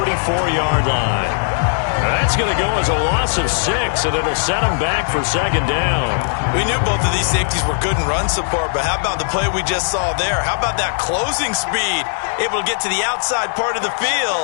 line. That's going to go as a loss of 6, and it'll set him back for 2nd down. We knew both of these safeties were good in run support, but how about the play we just saw there? How about that closing speed? Able to get to the outside part of the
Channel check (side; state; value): right; silent; digital silence